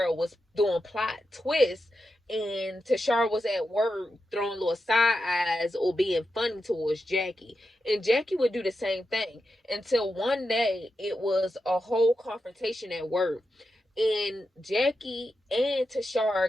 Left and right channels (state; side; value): normal; both; correlation 0.88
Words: was doing plot twists and Tashara was at work throwing little side eyes or being funny towards Jackie. And Jackie would do the same thing until one day it was a whole confrontation at work. And Jackie and